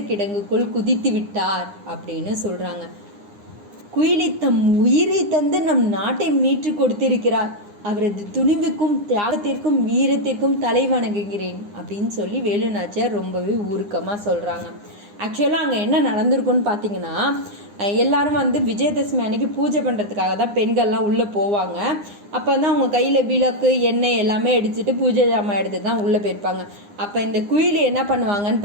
கிடங்குக்குள் குதித்து விட்டார் அப்படின்னு சொல்கிறாங்க. குயிலி தம் உயிரை தந்து நம் நாட்டை மீட்டு கொடுத்திருக்கிறார். அவரது துணிவுக்கும் தியாகத்திற்கும் வீரத்திற்கும் தலை வணங்குகிறேன் அப்படின்னு சொல்லி வேலு நாச்சியார் ரொம்பவே உருக்கமாக சொல்கிறாங்க. ஆக்சுவலாக அங்கே என்ன நடந்திருக்குன்னு பார்த்தீங்கன்னா, எல்லாரும் வந்து விஜயதசமி அன்னைக்கு பூஜை பண்ணுறதுக்காக தான் பெண்கள்லாம் உள்ளே போவாங்க. அப்போ வந்து அவங்க கையில் விளக்கு எண்ணெய் எல்லாமே அடிச்சுட்டு பூஜை ஜாமான் எடுத்து தான் உள்ளே போயிருப்பாங்க. அப்போ இந்த குயிலி என்ன பண்ணுவாங்கன்னு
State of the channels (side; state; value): left; late; 9.8 ms